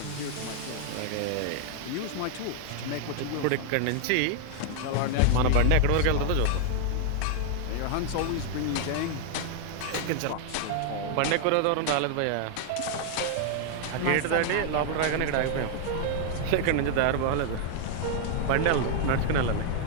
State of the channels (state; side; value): different; both; correlation -0.01